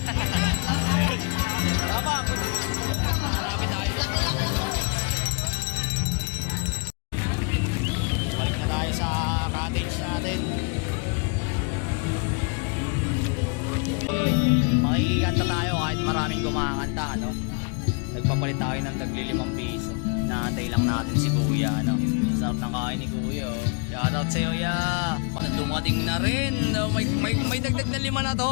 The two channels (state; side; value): quieter; right; 35.9 dB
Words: Tama, hanapin tayo doon. Balik na tayo sa cottage natin. Makikikanta tayo kahit maraming kumakanta, no? Nagpapalit tayo ng tagli 5 piso. Naantay lang natin si Kuya, no? So Sarap ng kain ni Kuya. Oh. Shoutout sa'yo, ya. Dumating na rin. May dagdag na 5 na